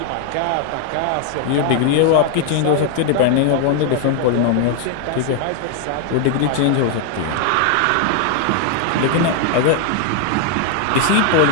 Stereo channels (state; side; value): different; both; correlation 0.00